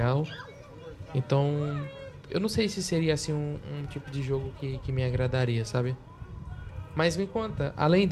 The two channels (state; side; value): identical; both; correlation 1.00